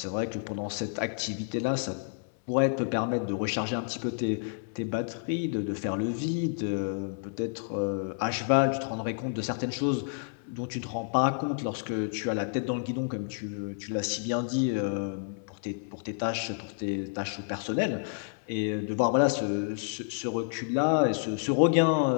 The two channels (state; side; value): silent; right; digital silence